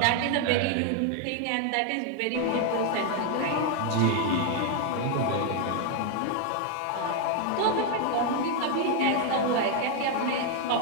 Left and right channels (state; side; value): different; both; correlation 0.00